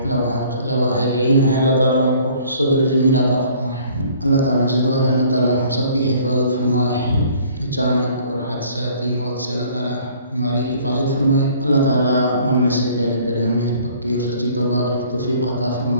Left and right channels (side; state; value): both; inverted; correlation -0.55